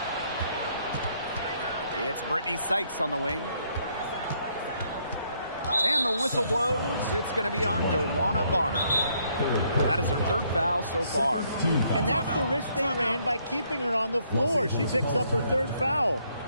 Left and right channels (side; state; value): both; inverted; correlation -0.70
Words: It's Brittany Sykes on the wing. And the whistle blows. It's going to be on Joanna Bonner. That is her third foul so far. And that's the risk they ran by keeping her on the floor. She picks up her third foul.